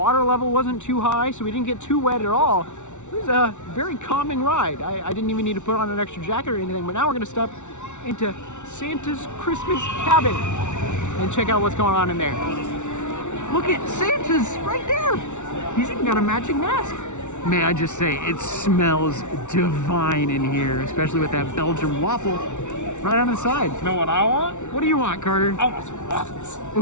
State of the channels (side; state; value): right; late; 0.84 ms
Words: level wasn't too high, so we didn't get too wet at all. It was a very calming ride. I didn't even need to put on an extra jacket or anything, but now we're gonna step into Santa's Christmas cabin and check out what's going on in there. Look at Santa's right there. He's even got a matching mask. May I just say, it smells divine in here, especially with that Belgian waffle right on the side. You know what I want? What do you want, Carter? I want some waffles.